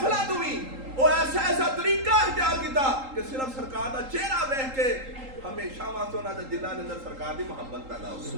तू भी वो ऐसा ऐसा तरीका इख्तियार किया कि सिर्फ सरकार दा चेहरा देख के हमेशा वास्ते उन्हां दे दिलां दे अंदर सरकार दी मुहब्बत पैदा हो।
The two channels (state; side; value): late; left; 3.8 ms